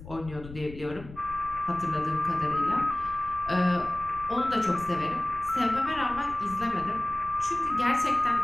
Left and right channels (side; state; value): left; noise; rumble, 15 dB below the sound